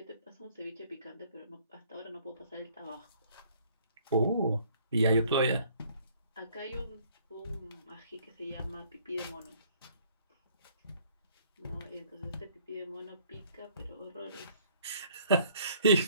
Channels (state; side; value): inverted; both; correlation -0.59